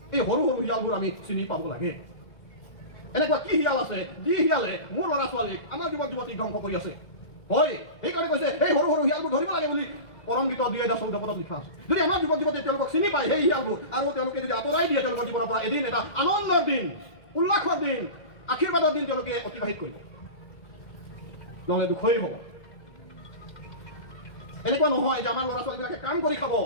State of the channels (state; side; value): late; right; 1.4 ms